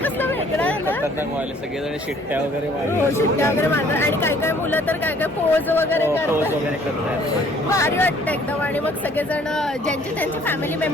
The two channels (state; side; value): normal; both; correlation 0.58